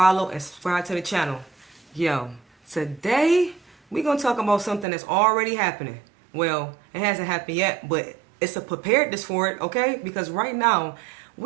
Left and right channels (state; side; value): drops out; left; at 4.9 s